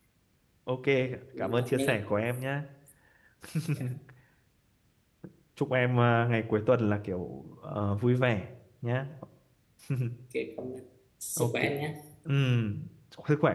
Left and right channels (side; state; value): both; identical; correlation 1.00